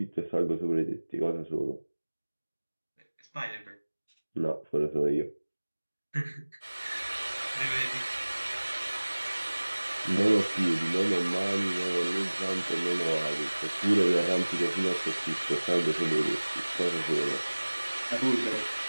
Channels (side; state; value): both; inverted; correlation -1.00